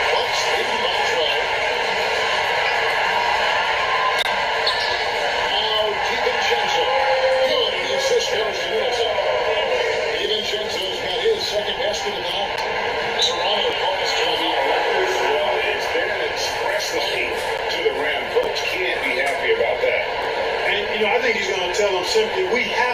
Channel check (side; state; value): right; noise; rumble, 23 dB below the sound